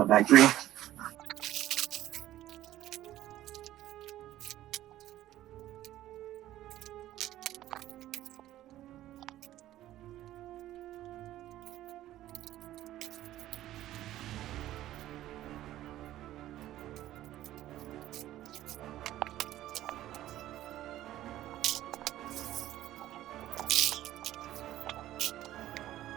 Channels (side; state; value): left; quieter; 14.0 dB